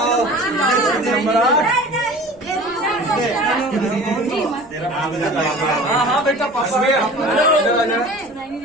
हाँ बेटा पापा।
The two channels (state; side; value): noise; left; rumble, 30 dB below the sound